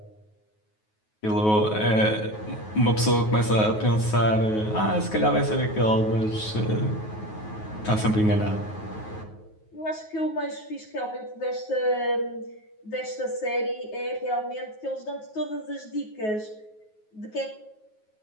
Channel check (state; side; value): late; right; 9.4 ms